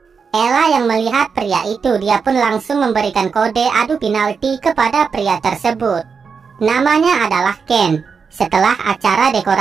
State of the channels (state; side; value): quieter; left; 5.7 dB